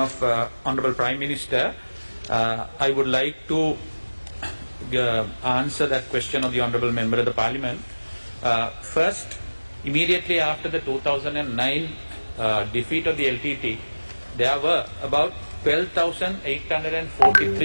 Honorable Prime Minister, I would like to answer that question of the Honorable Member of the Parliament. First, immediately after the 2009 defeat of the LTT, there were about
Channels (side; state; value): both; inverted; correlation -1.00